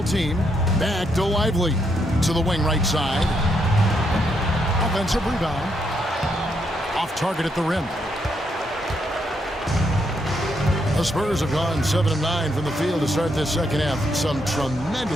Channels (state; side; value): normal; both; correlation 0.77